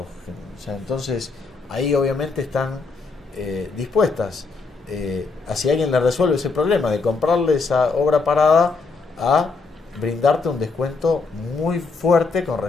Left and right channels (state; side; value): quieter; right; 4.3 dB